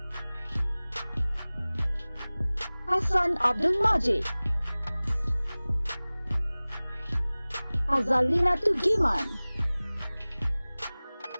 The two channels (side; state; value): both; inverted; correlation -0.99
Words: Hasan Abdul Majid, Azalina Tugiman,